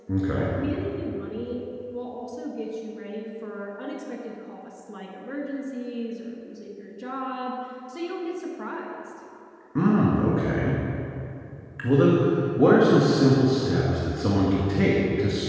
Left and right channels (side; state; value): both; identical; correlation 1.00